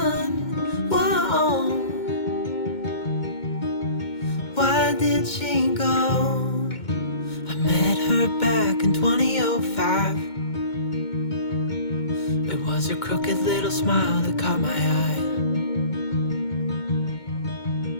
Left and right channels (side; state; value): right; late; 2.2 ms